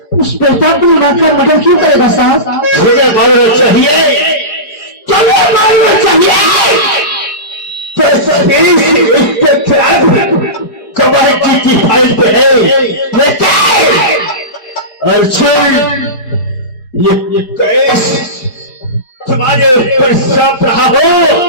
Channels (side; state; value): right; late; 4.9 ms